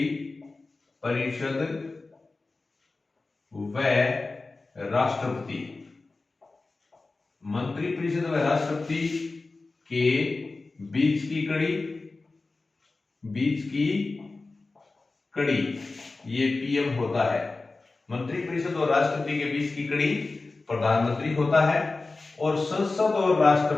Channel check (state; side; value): quieter; right; 3.6 dB